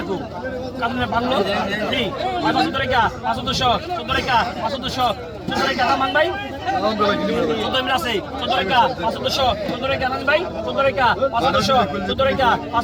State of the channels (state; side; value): identical; both; correlation 1.00